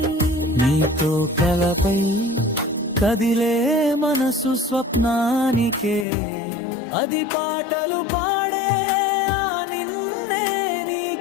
నీతో కలపై కదిలే మనసు స్వప్నానికే, అది పాటలు పాడే ఆ నిన్నే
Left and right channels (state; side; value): drops out; right; at 6.1 s